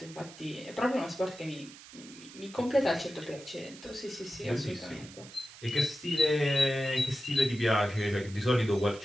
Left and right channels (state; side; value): noise; right; hiss, 18 dB below the sound